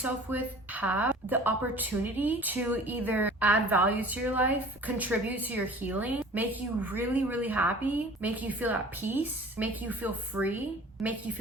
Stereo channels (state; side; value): normal; both; correlation 0.45